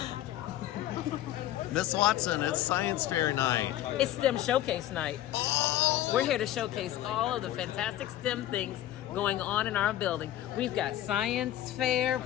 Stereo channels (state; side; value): quieter; right; 13.4 dB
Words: Miss Watson, it's science fair night. It's STEM Showcase night. We're here to showcase all of the fantastic STEM things going on in our building. We've got science fair